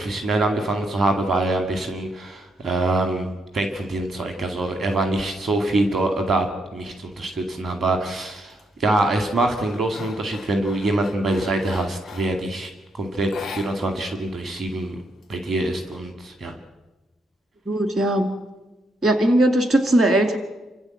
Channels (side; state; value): both; normal; correlation 0.78